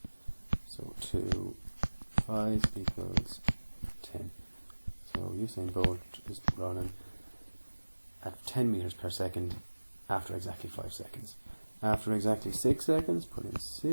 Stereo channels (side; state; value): both; inverted; correlation -1.00